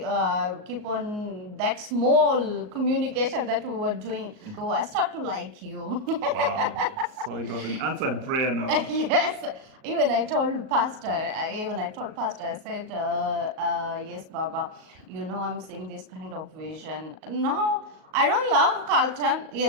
keep on that small communication that we were doing. So I start to like you. Wow. So it was an answered prayer now. Yes. Even I told pastor. I said, yes, Baba. I'm seeing this kind of vision. No, I don't love Carlton.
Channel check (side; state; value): left; late; 38 ms